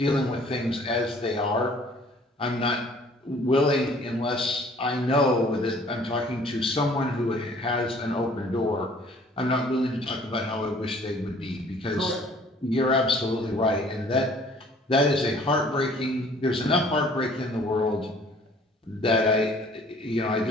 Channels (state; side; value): normal; both; correlation 0.55